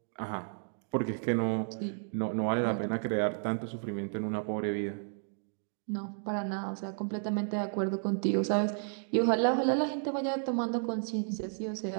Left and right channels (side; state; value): left; silent; 56 dB below the other